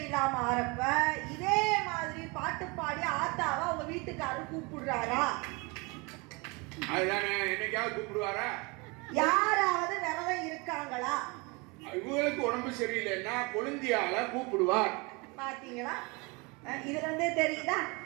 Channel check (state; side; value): quieter; left; 27.5 dB